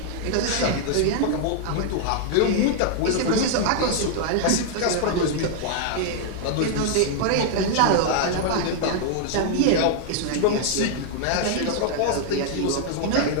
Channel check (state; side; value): different; both; correlation -0.01